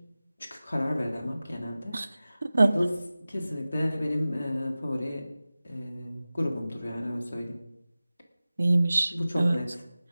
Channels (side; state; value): both; inverted; correlation -0.96